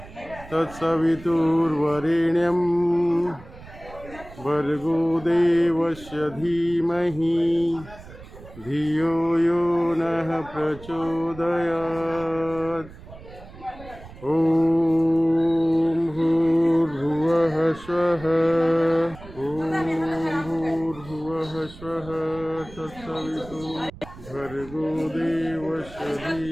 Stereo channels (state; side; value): noise; right; rumble, 18 dB below the sound